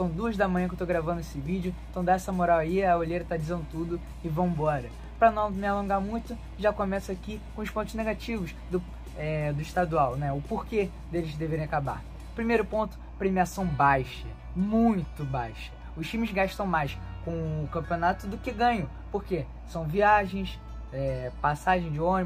2 da manhã que eu tô gravando esse vídeo, então dá essa moral aí, a olheira tá dizendo tudo e vambora. Para não me alongar muito, já começo aqui com os pontos negativos do estadual, né? O porquê deles deverem acabar. Primeiro ponto, premiação baixa, muito baixa. Os times gastam mais com o campeonato do que ganham. Por quê? São viagens, passagem de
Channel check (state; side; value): identical; both; correlation 1.00